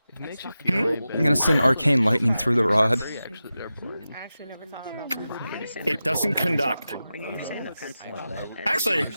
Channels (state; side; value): inverted; both; correlation -0.93